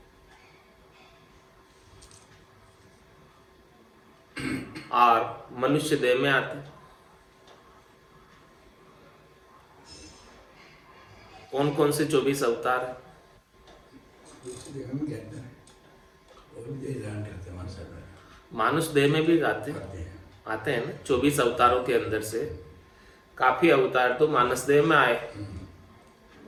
और मनुष्य देह में आते हैं कौन कौन से 24 अवतार हैं? मानुष देह में भी आते हैं ना 24 अवतारों के अंदर से काफी अवतार तो मानस देह में आए।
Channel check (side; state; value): both; identical; correlation 1.00